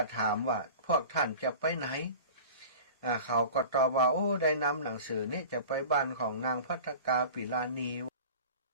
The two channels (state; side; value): inverted; both; correlation -0.39